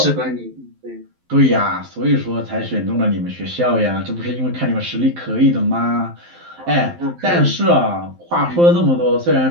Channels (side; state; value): left; late; 12 ms